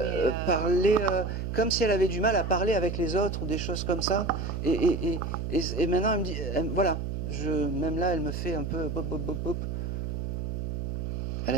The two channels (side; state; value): right; noise; hum, 3 dB below the sound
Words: parler comme si elle avait du mal à parler avec les autres ou des choses comme ça. Et maintenant elle me dit, voilà, même là elle me fait un peu bop, bop, bop, bop. Elle